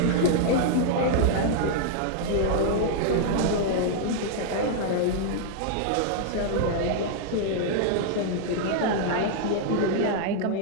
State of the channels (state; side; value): different; both; correlation 0.00